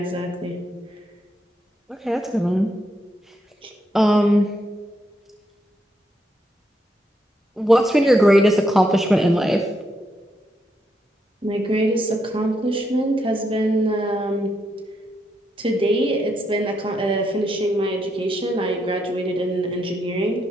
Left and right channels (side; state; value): both; normal; correlation 0.79